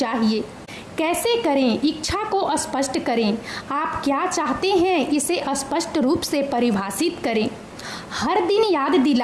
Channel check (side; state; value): both; identical; correlation 1.00